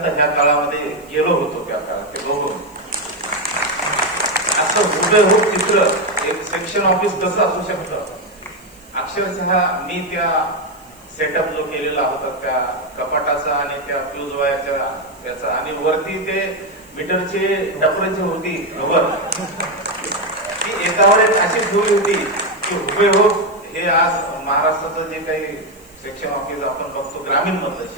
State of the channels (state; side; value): noise; right; hiss, 28 dB below the sound